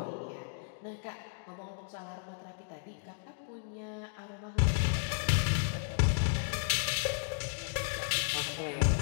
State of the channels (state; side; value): silent; right; digital silence